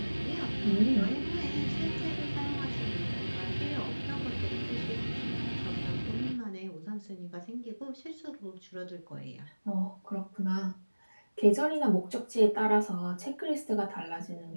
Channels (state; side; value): inverted; both; correlation -1.00